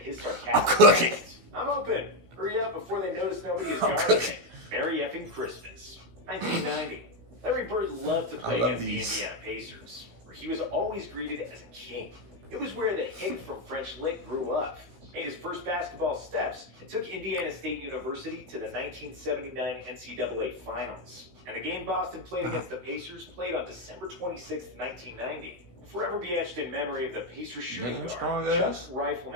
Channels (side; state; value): left; late; 16 ms